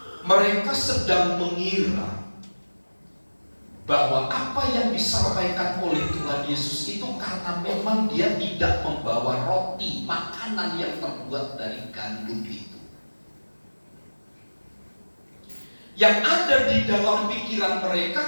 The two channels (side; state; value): both; inverted; correlation -1.00